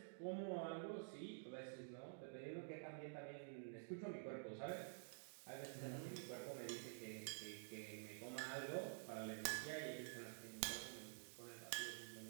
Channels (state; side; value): silent; left; digital silence